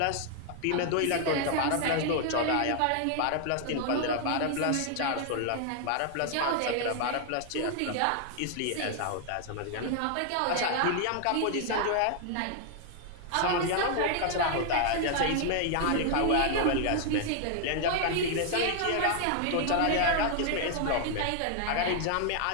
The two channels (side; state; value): both; different; correlation 0.00